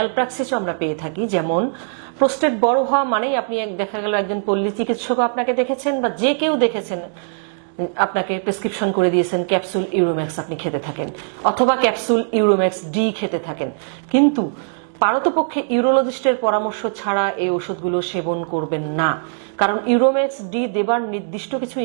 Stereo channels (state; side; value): silent; left; digital silence